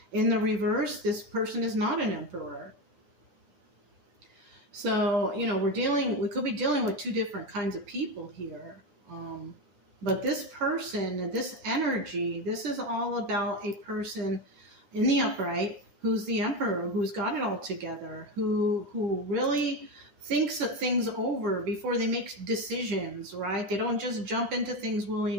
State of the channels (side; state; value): left; late; 10 ms